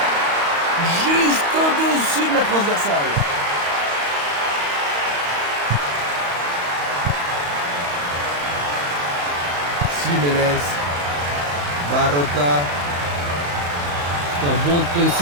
Juste au-dessus de la transversale. Jiménez. Barota. C'est un bon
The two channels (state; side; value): late; left; 35 ms